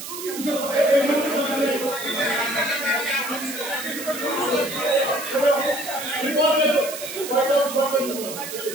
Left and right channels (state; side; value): noise; right; hiss, 9 dB below the sound